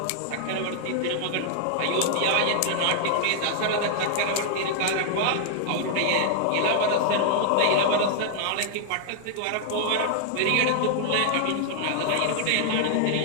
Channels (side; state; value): both; different; correlation -0.01